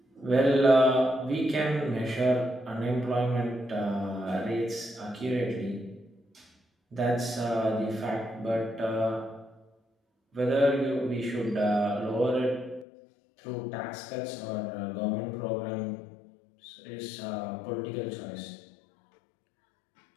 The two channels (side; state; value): right; drops out; at 12.9 s